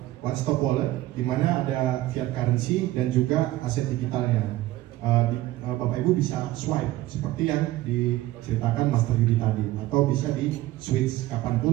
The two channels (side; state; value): left; quieter; 16.3 dB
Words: one stop wallet, di mana ada fiat currency dan juga aset digitalnya. Bapak Ibu bisa swipe seperti yang diceritakan Master Yudi tadi, atau bisa di switch